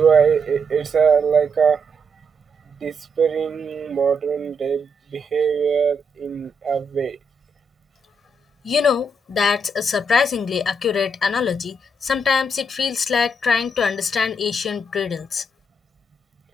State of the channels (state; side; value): normal; both; correlation 0.78